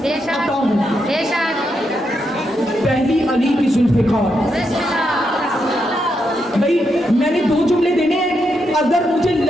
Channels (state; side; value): normal; both; correlation 0.82